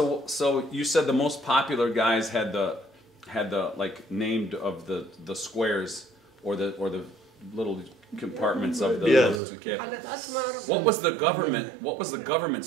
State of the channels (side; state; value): left; drops out; at 9.4 s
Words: you said the most popular guys had the like named of the squares or the little compartments of the Yes. Tilkepe. حلت أسمر. What was the government